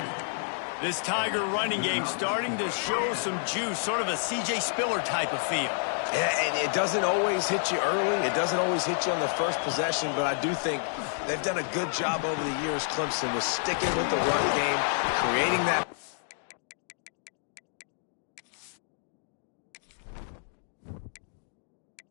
This Tiger running game starting to show some juice, sort of a C.J. Spiller type of feel. Yeah, and it doesn't always hit you early. It doesn't always hit you on the first possession, but I do think they've done a good job over the years, Clemson, with sticking with the run game, creating that.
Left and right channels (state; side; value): silent; right; digital silence